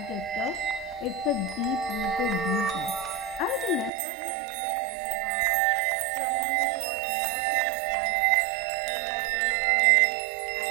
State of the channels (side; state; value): left; drops out; at 3.9 s